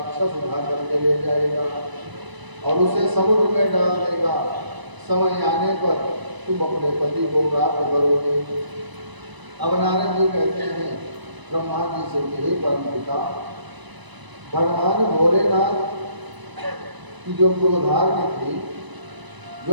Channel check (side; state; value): left; late; 1.0 ms